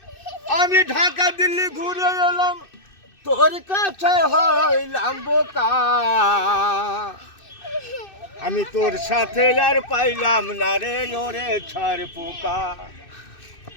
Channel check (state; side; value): late; right; 2.6 ms